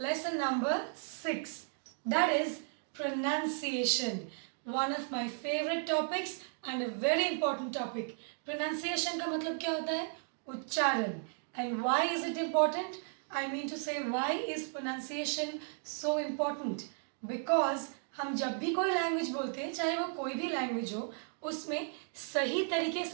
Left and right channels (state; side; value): silent; left; 55 dB below the other